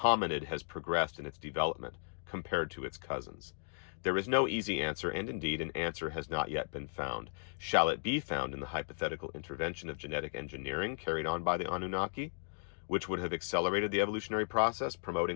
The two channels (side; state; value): right; silent; digital silence